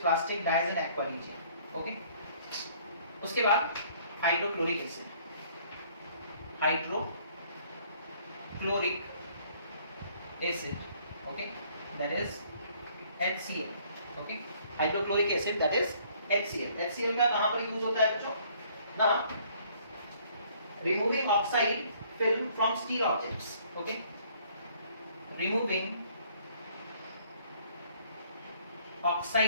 dyes and aqua regia. Okay, उसके बाद hydrochloric acid, hydrochloric acid. Okay, that is HCl। Okay, hydrochloric acid that is HCl। HCl का कहां पर यूज होता है बच्चों ना, removing oxide film from steel objects. Okay, removing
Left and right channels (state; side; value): inverted; both; correlation -0.60